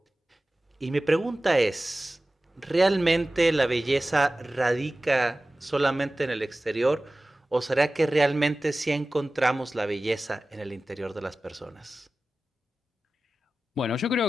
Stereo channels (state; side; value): normal; both; correlation 0.96